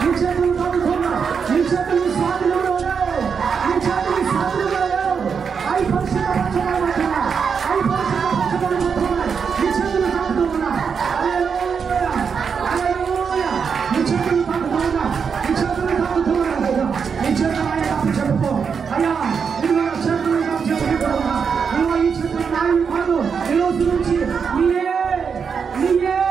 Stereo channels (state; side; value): quieter; left; 6.3 dB